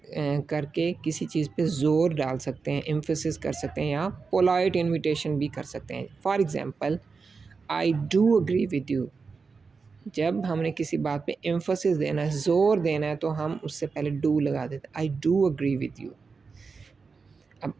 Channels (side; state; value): left; quieter; 4.8 dB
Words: किसी चीज़ पे ज़ोर डाल सकते हैं, एम्फसिस कर सकते हैं या पोलाइट इन्विटेशन भी कर सकते हैं। For example I do agree with you, जब हमने किसी बात पे एम्फसिस देना है, ज़ोर देना है, तो हम उससे पहले डू लगा देते हैं, I do agree with you. अब